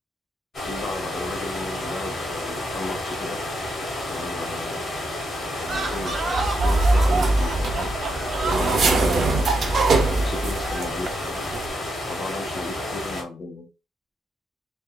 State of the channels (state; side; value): normal; both; correlation 0.81